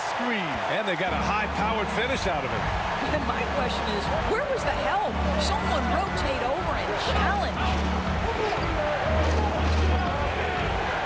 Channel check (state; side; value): identical; both; correlation 1.00